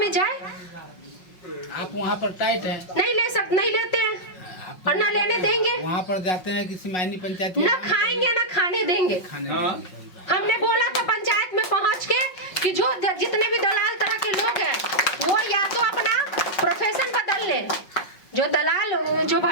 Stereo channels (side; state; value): right; late; 5.3 ms